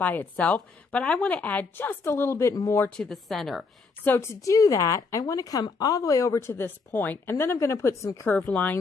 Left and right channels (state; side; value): quieter; right; 4.4 dB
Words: itself, but I want to add just a little bit more to the center. So to do that, I want to come all the way over to this point, and then I'm going to put some curved